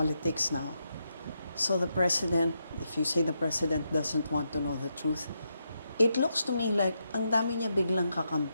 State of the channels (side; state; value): both; inverted; correlation -0.83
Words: now. So the President, if you say the President doesn't want to know the truth, it looks to me like ang dami niya biglang